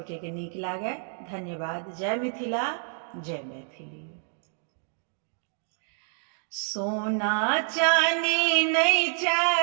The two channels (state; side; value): silent; left; digital silence